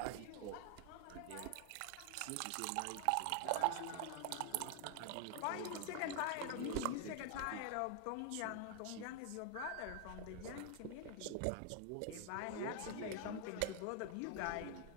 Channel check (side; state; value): both; different; correlation 0.00